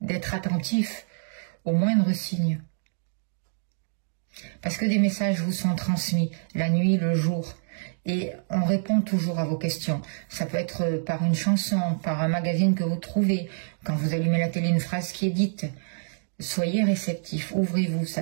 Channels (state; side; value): silent; left; digital silence